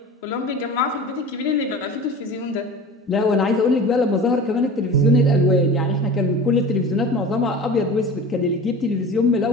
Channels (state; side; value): normal; both; correlation 0.36